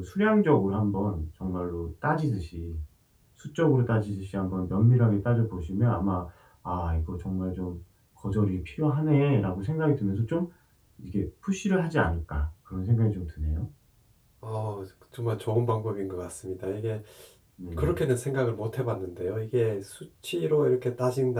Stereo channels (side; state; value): both; identical; correlation 1.00